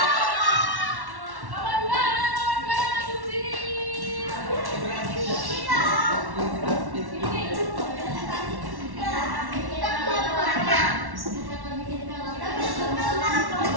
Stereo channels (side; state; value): left; late; 1.1 ms